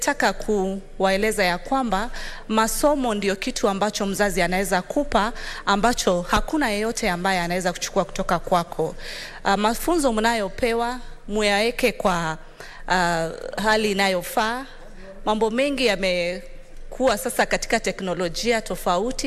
kuwaeleza ya kwamba masomo ndio kitu ambacho mzazi anaweza kupa ambacho hakuna yeyote ambaye anaweza kuchukua kutoka kwako. Mafunzo mnayopewa muyaeke kwa hali inayofaa. Mambo mengi yamekuwa sasa katika teknolojia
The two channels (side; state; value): both; identical; correlation 1.00